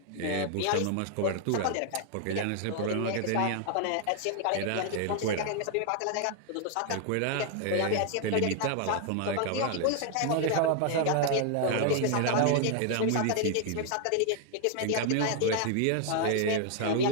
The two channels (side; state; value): both; different; correlation 0.00